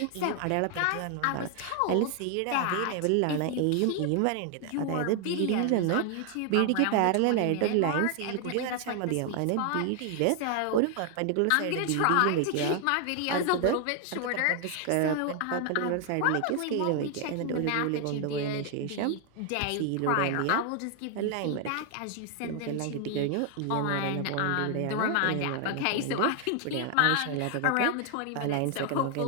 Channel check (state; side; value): different; both; correlation 0.00